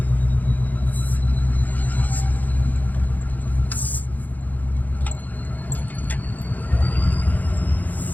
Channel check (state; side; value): late; right; 0.082 ms